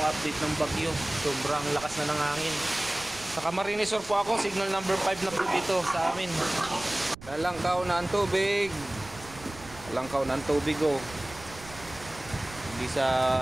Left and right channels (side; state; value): right; noise; rumble, 17 dB below the sound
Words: update ng bagyo. Sobrang lakas na ng hangin. Sa Camarines Sur po ako. Signal number 5 na po dito sa amin. Lalangkaw na ang tubig. Lalangkaw na ang tubig oh. Hindi sa